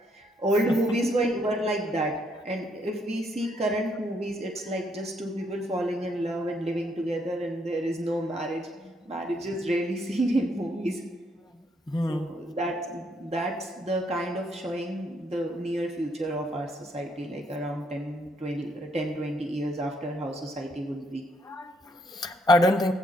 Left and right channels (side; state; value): both; normal; correlation 0.72